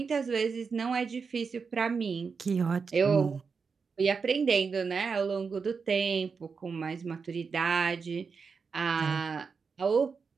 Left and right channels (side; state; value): left; quieter; 5.3 dB